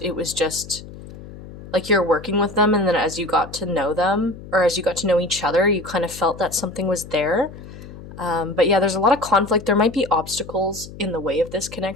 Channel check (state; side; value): noise; left; hum, 15 dB below the sound